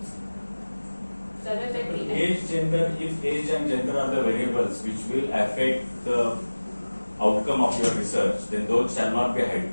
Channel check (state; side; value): inverted; both; correlation -1.00